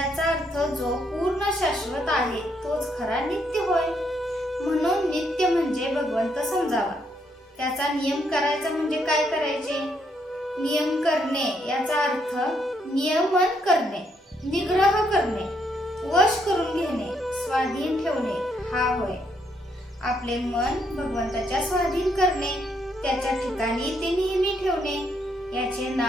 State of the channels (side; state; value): both; normal; correlation 0.74